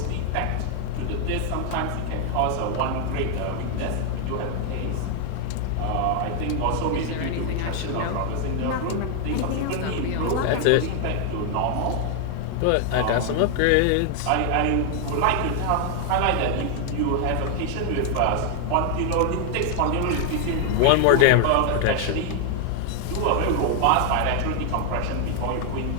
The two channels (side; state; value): both; different; correlation 0.00